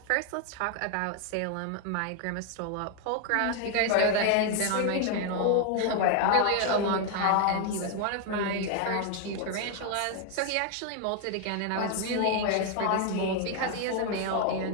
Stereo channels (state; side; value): different; both; correlation 0.01